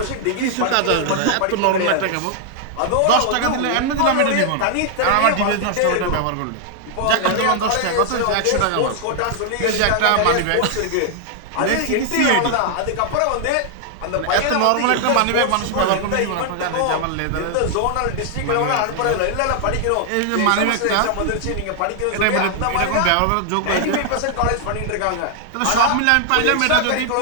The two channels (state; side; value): different; both; correlation 0.00